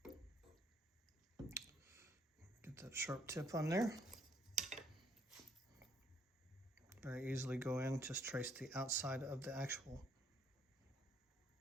Get that sharp tip on there. Very easily go in, just trace the outside of the actual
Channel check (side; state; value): both; normal; correlation 0.67